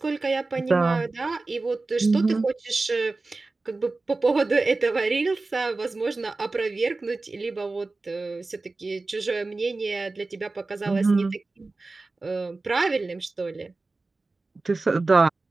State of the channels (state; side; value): quieter; left; 3.5 dB